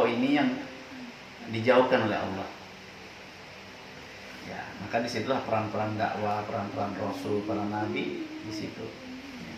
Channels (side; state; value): both; identical; correlation 1.00